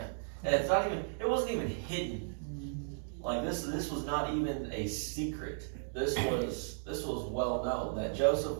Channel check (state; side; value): silent; left; digital silence